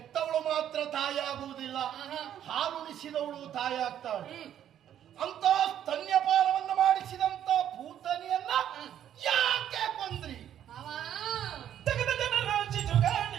ಮಾತ್ರ ತಾಯಿ ಆಗುವುದಿಲ್ಲ, ಹಾಲುಣಿಸಿದವಳು ತಾಯಿ ಆಗ್ತಾಳೆ. ಅಂತ ಸ್ತನ್ಯಪಾನವನ್ನು ಮಾಡಿಸಿದಂತ ಭೂತನಿಯನ್ನ ಯಾಕೆ ಕೊಂದ್ರಿ? ಮಾವ ತೆಗೆದ ಜನರ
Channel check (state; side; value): quieter; left; 10.4 dB